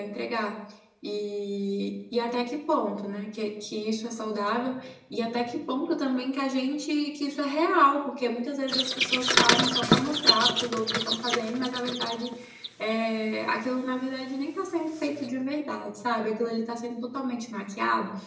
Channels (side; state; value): both; identical; correlation 1.00